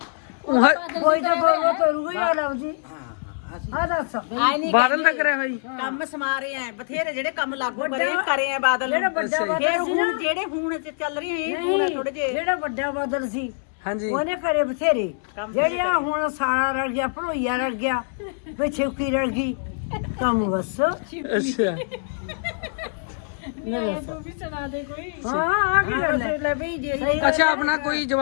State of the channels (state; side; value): silent; right; 63 dB below the other